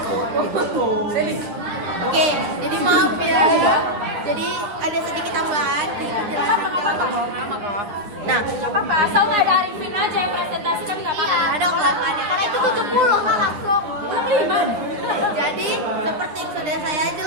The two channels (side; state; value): left; late; 9.7 ms